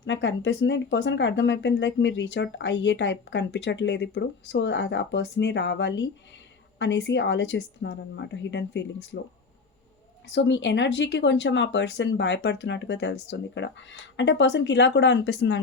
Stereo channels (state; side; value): quieter; right; 4.6 dB